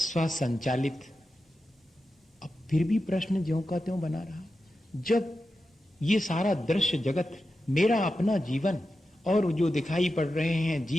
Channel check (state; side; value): normal; both; correlation 0.90